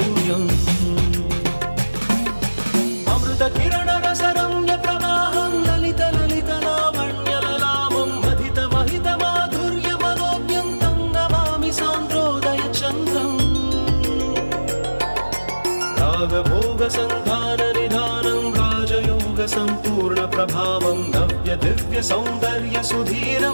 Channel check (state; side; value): inverted; both; correlation -1.00